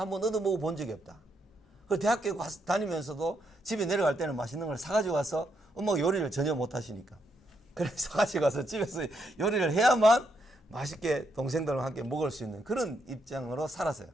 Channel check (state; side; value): normal; both; correlation 0.78